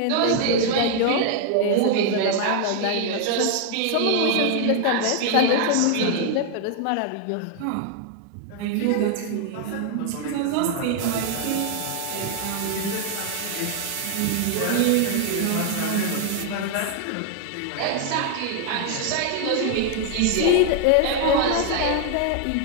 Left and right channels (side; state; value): both; different; correlation 0.00